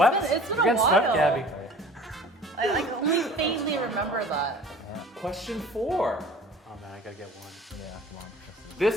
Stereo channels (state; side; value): normal; both; correlation 0.46